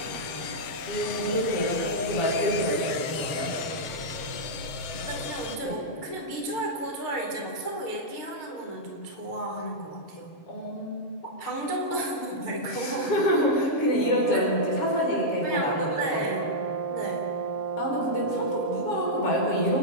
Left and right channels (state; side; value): late; right; 7.7 ms